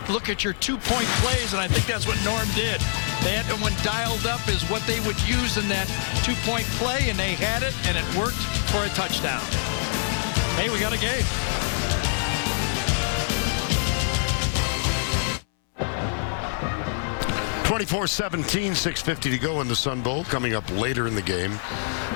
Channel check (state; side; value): silent; right; 62 dB below the other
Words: look at your two-point plays, and I think that's what Norm did. They had one dialed up is what they would use in that two-point play, and they had it, and it worked for a touchdown. Hey, we got a game. (24-17), 6:50 to go in the Sun Bowl. Coming up later in the game,